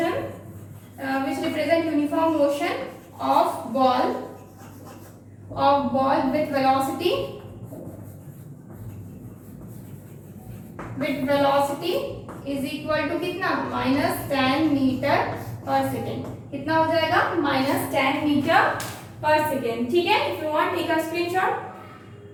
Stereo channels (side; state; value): both; identical; correlation 1.00